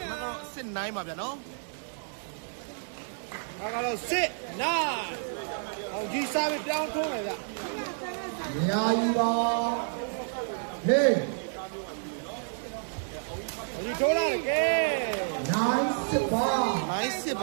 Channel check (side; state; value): left; silent; digital silence